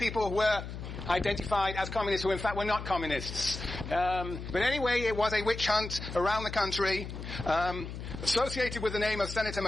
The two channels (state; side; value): noise; left; hum, 8 dB below the sound